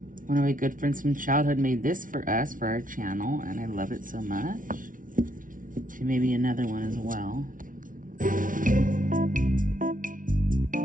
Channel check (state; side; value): late; left; 0.38 ms